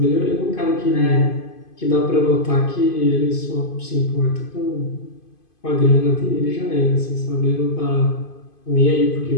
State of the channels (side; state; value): right; late; 2.5 ms